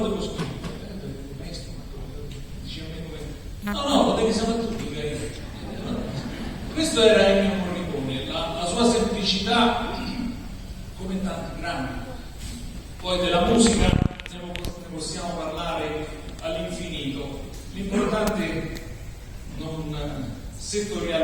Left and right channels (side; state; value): both; identical; correlation 1.00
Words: scrivere? Maestro, dice a me come... No, lo devi sapere tu, dica io. Questo era Ennio Morricone, la sua semplicità, come tanti grandi. Poi della musica ne possiamo parlare all'infinito. L'importante è non